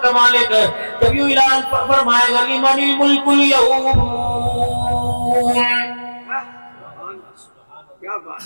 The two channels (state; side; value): inverted; both; correlation -1.00